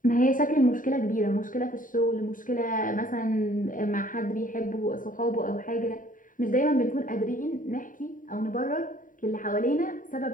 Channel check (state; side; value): late; right; 0.39 ms